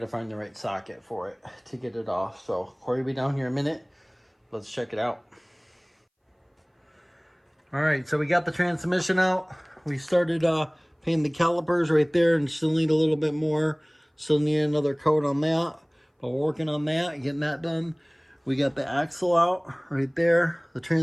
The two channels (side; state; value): both; identical; correlation 1.00